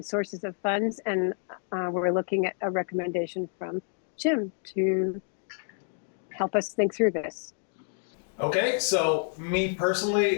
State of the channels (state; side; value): silent; right; 59 dB below the other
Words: sources of funds, and we're looking at a recommendation from Jim to help us think through this. Okay, so me personally,